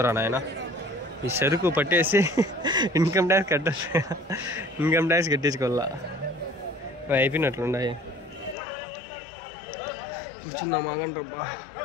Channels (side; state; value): right; drops out; at 8.6 s